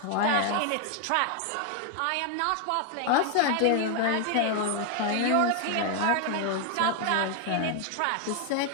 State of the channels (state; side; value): different; both; correlation 0.00